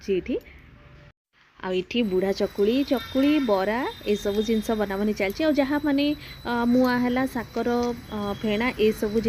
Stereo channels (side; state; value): both; identical; correlation 1.00